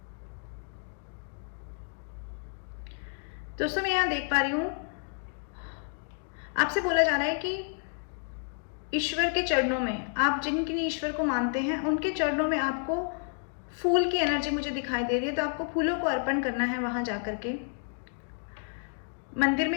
दोस्तों मैं यहाँ देख पा रही हूँ, आपसे बोला जा रहा है कि ईश्वर के चरणों में, आप जिनके ईश्वर को मानते हैं उनके चरणों में आपको फूल की एनर्जी मुझे दिखाई दे रही है। तो आपको फूलों को अर्पण करना है। वहां जाकर के मंदिर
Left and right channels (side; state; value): right; silent; 58 dB below the other